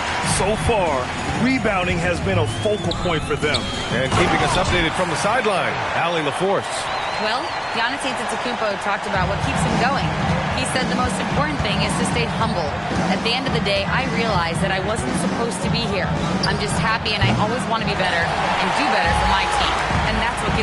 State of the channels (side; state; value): both; identical; correlation 1.00